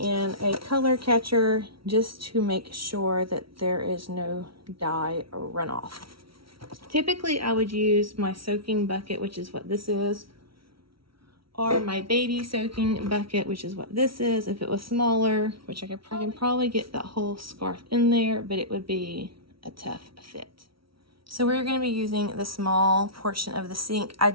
a color catcher just to make sure that there is no dye runoff. Typically, I would use my soaking bucket, which is what this is, or my baby soaking bucket, which is what this is. If it was smaller, which I can probably get that whole scarf in there, but it would be a tough fit. So we're going to be using the small portion of the sink. I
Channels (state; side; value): late; left; 0.75 ms